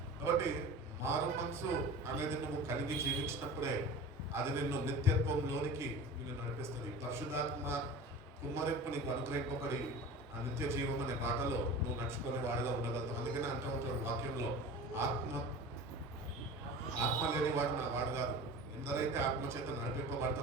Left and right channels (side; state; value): both; normal; correlation 0.35